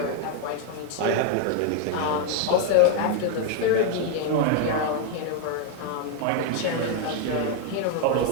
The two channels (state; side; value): different; both; correlation 0.01